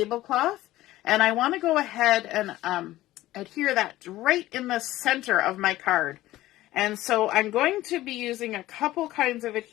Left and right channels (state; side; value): quieter; right; 16.0 dB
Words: and I want to go ahead and adhere that right in the center of my card. And so I'm going to be using a couple kinds of